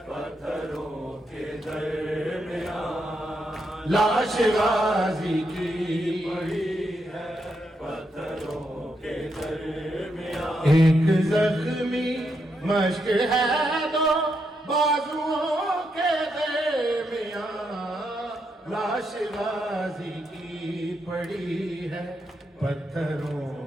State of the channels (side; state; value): both; normal; correlation 0.81